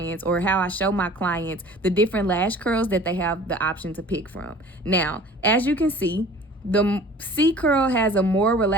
or how I show my clients the different lash curls that they have the option to pick from. Now, as you can see, the C curl has a more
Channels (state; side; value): normal; both; correlation 0.46